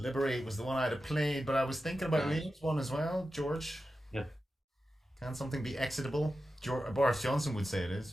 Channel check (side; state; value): both; normal; correlation 0.92